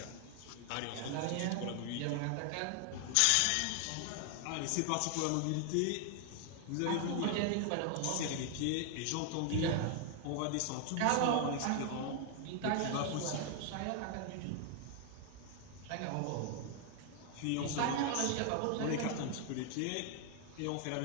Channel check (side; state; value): both; different; correlation 0.00